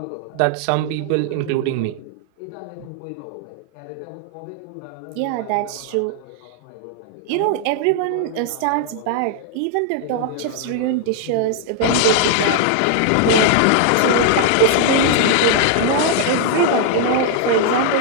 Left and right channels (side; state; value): both; different; correlation 0.00